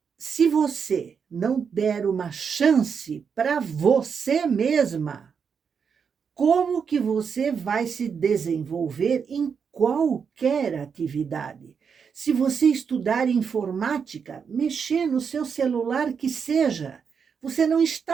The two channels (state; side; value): quieter; left; 6.4 dB